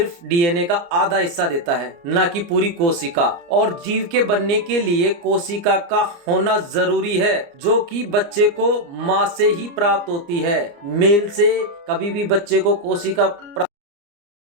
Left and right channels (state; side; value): late; left; 29 ms